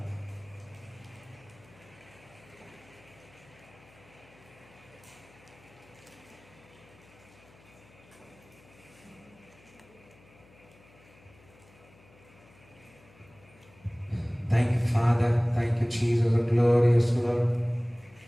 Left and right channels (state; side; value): noise; left; hum, 26 dB below the sound